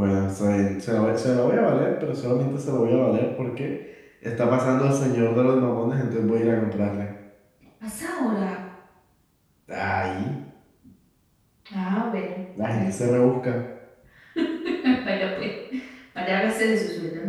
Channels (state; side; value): identical; both; correlation 1.00